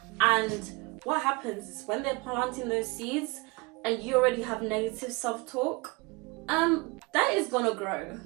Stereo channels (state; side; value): quieter; left; 26.5 dB